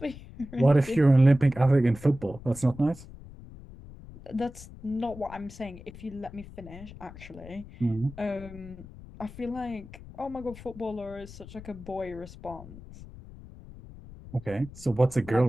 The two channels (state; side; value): noise; left; rumble, 16 dB below the sound